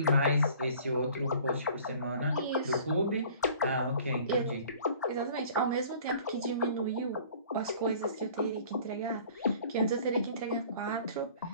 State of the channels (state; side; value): inverted; both; correlation -0.50